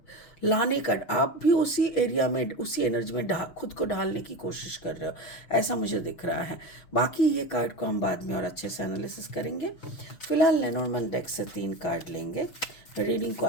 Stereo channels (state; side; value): late; right; 6.1 ms